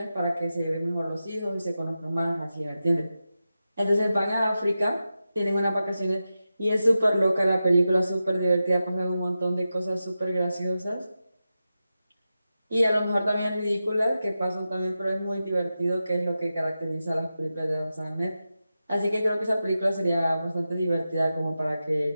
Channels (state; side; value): inverted; both; correlation -0.92